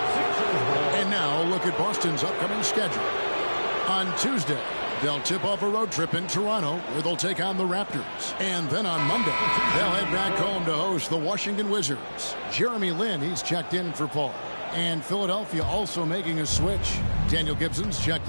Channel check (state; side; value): inverted; both; correlation -1.00